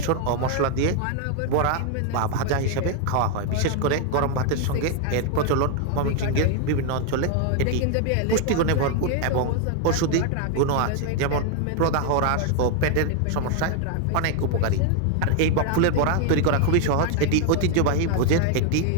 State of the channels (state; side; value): different; both; correlation 0.00